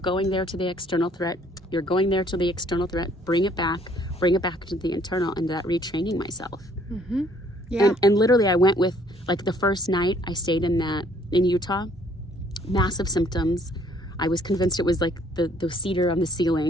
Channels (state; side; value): normal; both; correlation 0.61